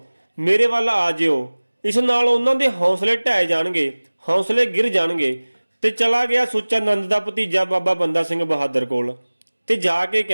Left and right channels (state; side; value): inverted; both; correlation -1.00